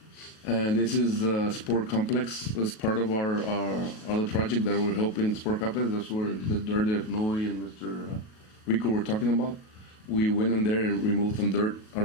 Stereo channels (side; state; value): right; late; 37 ms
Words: And this is the sport complex as part of our other project that we're helping the sport complex. That's where the dirt that Noe and Mr. Rico were talking about. We went in there and removed some dirt